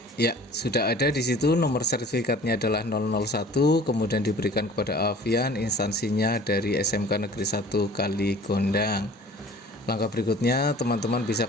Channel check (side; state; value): both; normal; correlation 0.47